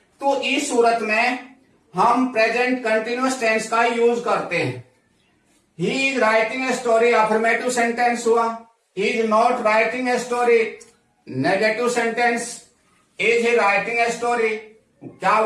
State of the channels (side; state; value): both; identical; correlation 1.00